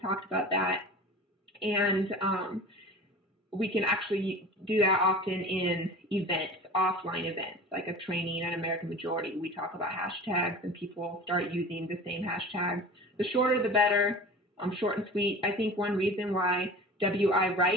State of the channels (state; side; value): normal; both; correlation 0.37